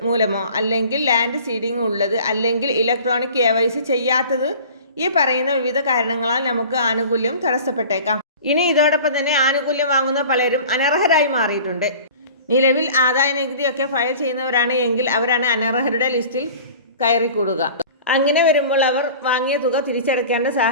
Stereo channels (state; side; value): inverted; both; correlation -0.42